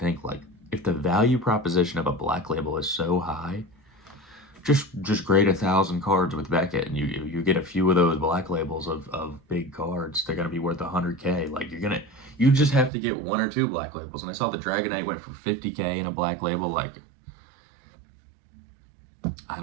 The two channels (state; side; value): drops out; left; at 12.9 s